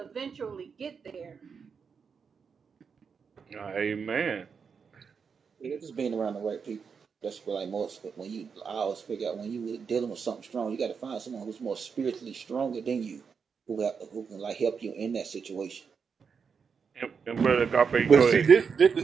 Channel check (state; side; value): quieter; left; 6.0 dB